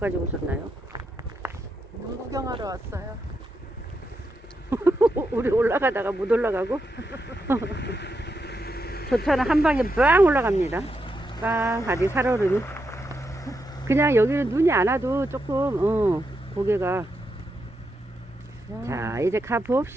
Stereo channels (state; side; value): normal; both; correlation 0.84